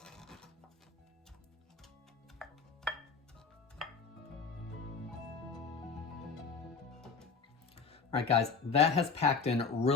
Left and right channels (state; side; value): quieter; right; 5.1 dB